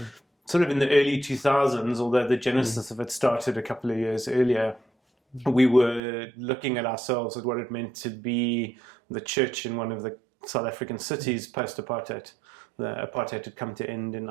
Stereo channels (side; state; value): left; drops out; at 6.0 s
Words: sort of in the early 2000s, although the genesis of it started a couple of years earlier. We were looking at ourselves at what it meant to be the church in one of the South African cities post-apartheid. The apartheid had come to end in